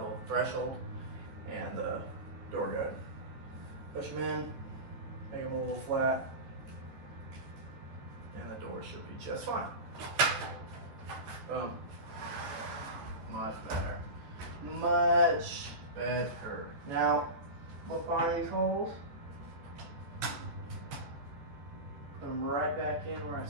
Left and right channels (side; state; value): left; late; 14 ms